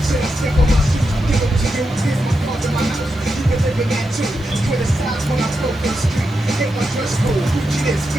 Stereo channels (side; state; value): both; normal; correlation 0.87